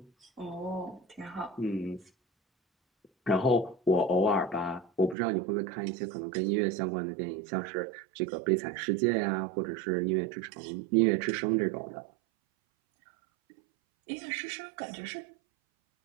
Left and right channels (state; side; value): drops out; left; at 5.2 s